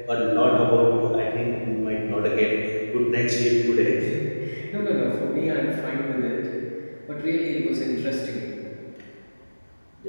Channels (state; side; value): inverted; both; correlation -1.00